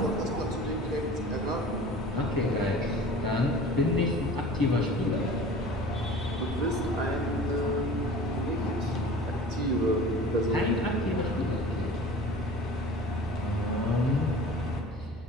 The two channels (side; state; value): both; normal; correlation 0.41